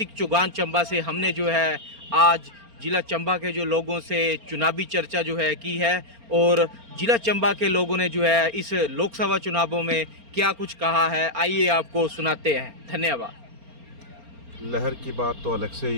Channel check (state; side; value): late; left; 4.3 ms